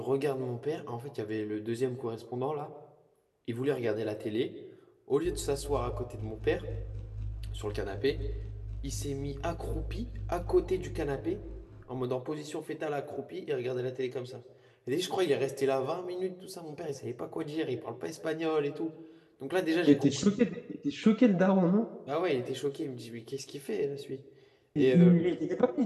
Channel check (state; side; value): identical; both; correlation 1.00